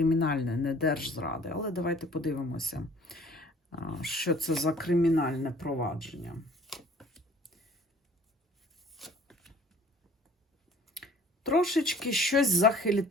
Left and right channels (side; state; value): both; normal; correlation 0.53